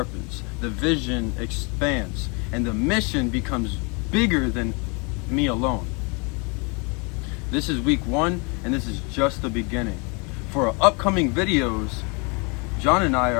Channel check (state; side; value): quieter; right; 32.2 dB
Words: the vision expands, and the mission becomes bigger than me alone. This is week 1, and this is just the beginning. For our upcoming videos, Jon and I